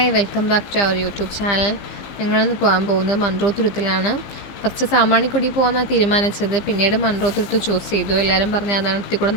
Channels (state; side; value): late; right; 15 ms